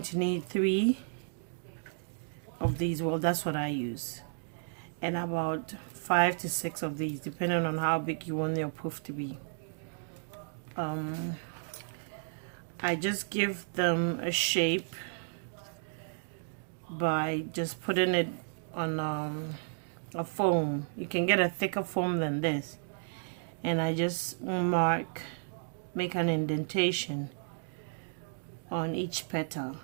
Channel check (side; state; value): left; silent; digital silence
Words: to need 3 of these. Well, that's what I use, and about 5 to 6 of these, depending on how big you want your poof to be. I just give them a shape by just putting it on a foam. You can get a thicker foam than this, and I just make an indentation on each petal,